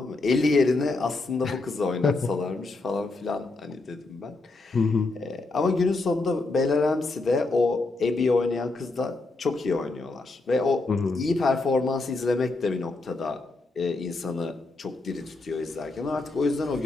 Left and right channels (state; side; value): quieter; right; 3.3 dB